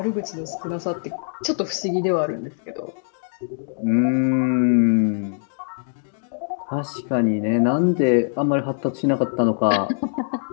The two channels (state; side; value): silent; right; digital silence